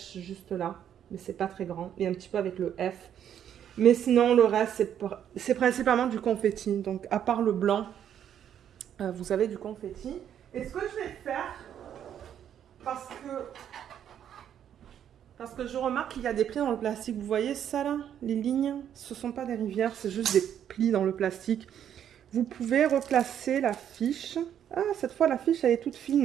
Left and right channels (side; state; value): left; quieter; 9.6 dB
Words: juste là, mais c'est pas très grand. Et un petit peu avec le F. Mais sinon, le reste, c'est principalement du confetti. Donc, à part le blanc, vous avez du confetti. Et ce que je vais faire, parce que je remarque qu'il y a des plis dans le plastique. Vous voyez ça là? Les lignes, ce ne sont pas des rivières, c'est juste des plis dans le plastique. Vous pouvez replacer la fiche. Ah, cette fois, la fiche, elle est toute